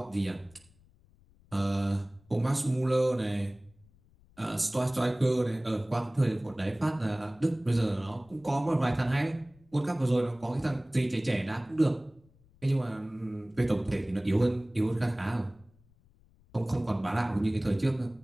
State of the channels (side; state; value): left; noise; rumble, 29 dB below the sound